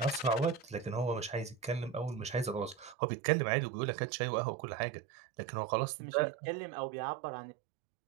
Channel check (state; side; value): drops out; left; at 3.0 s